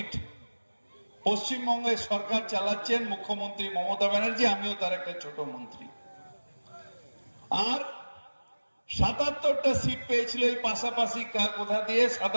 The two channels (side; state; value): both; inverted; correlation -1.00